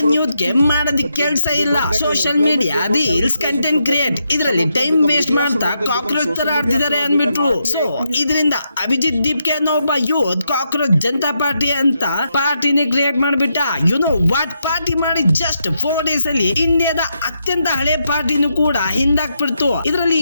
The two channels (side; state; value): both; inverted; correlation -0.82